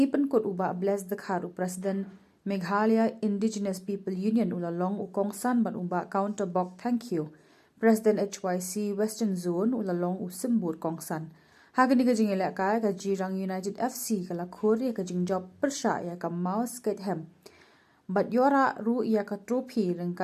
kot uba bless the kharu President Meghalaya Indigenous People Union ulalong ukongsan ban uba counter bok thank you. President HYC Western Zone ulalong usimbur kongsan. Hagani ka jing ilakay ka Jirang United FC ka lakur ya ka jing job persya ya ka mouse skate hem. Bat yora ru ya ka trophy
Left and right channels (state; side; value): identical; both; correlation 1.00